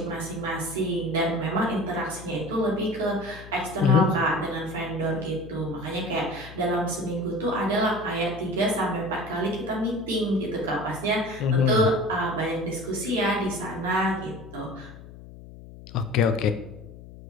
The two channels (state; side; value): noise; left; hum, 16 dB below the sound